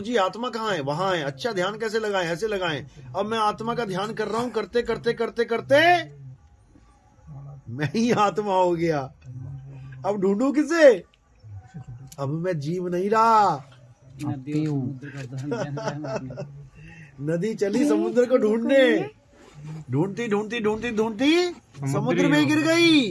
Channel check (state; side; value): identical; both; correlation 1.00